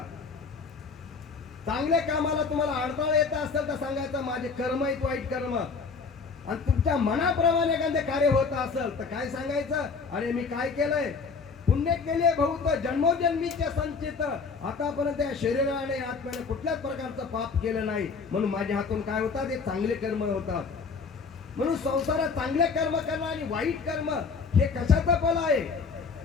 चांगल्या कामाला तुम्हाला अडथळा येत असेल तर सांगायचं माझे कर्म आहेत वाईट कर्म. आणि तुमच्या मनाप्रमाणे एखादे कार्य होत असेल तर काय सांगायचं, अरे मी काय केलंय, पुण्य केले बहुत जन्मोजन्मीचे संचित, आतापर्यंत या शरीराने आत्म्याने कुठल्याच प्रकारचं पाप केलं नाही, म्हणून माझ्या हातून काय होतात, हे चांगले कर्म होतात. म्हणून संसारात चांगले कर्म करणं आणि वाईट कर्म हे कशाचं फल आहे?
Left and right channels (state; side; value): quieter; right; 5.0 dB